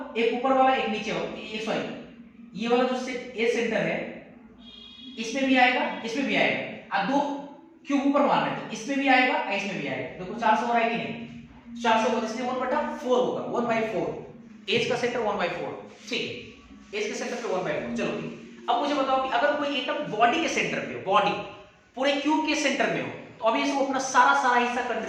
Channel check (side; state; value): both; identical; correlation 1.00